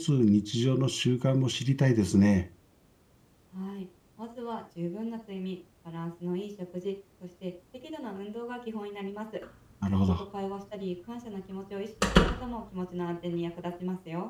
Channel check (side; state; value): both; identical; correlation 1.00